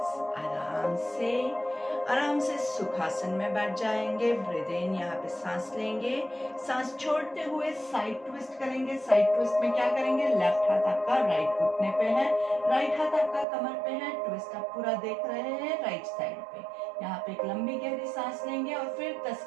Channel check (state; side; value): drops out; left; at 13.5 s